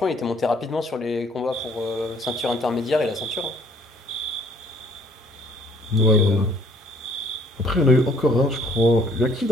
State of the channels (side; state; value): both; normal; correlation 0.60